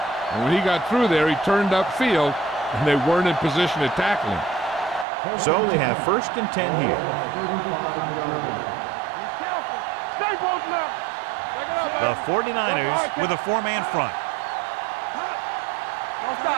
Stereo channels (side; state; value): left; drops out; at 5.1 s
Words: And when he got through there, he turned upfield, and they weren't in position to tackle him. So they have 1st and 10 here. 35-yard line. Be careful. Stay both now. The 49ers with a 4-man front.